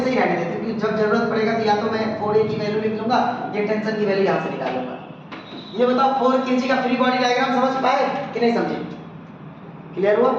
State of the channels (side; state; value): both; identical; correlation 1.00